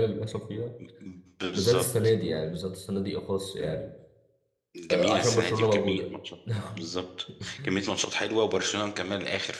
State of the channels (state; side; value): identical; both; correlation 1.00